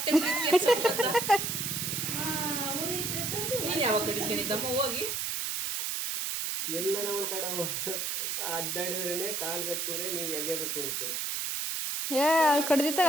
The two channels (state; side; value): noise; right; hiss, 1 dB below the sound